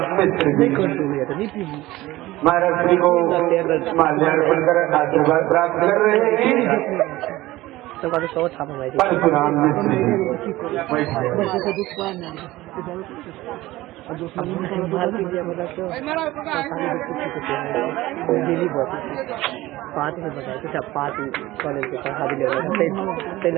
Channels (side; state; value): left; quieter; 17.7 dB